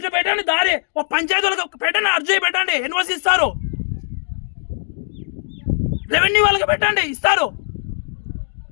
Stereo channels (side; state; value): right; silent; digital silence